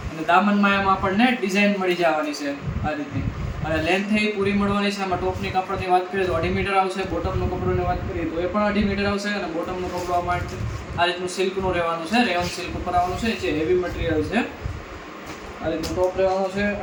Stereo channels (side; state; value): both; identical; correlation 1.00